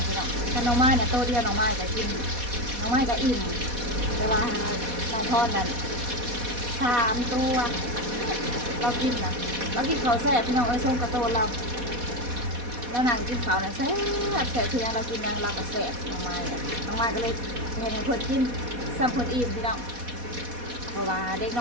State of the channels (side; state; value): left; late; 4.1 ms